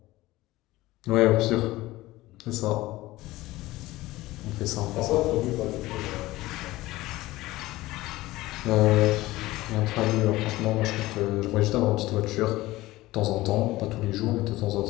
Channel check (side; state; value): right; quieter; 18.1 dB